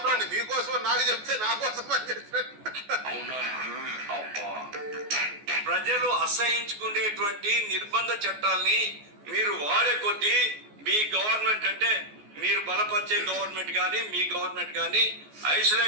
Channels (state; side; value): late; left; 14 ms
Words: మీకోసం నాకు చెప్తే నా కోసం అని చెప్పండి. ప్రజలు అసహించుకునేటువంటి నిర్బంధ చట్టాల్ని మీరు వాడే కొద్దీ మీ గవర్నమెంట్ అంటే మీరు బలపరిచే గవర్నమెంట్ కానీ మీ గవర్నమెంట్ కానీ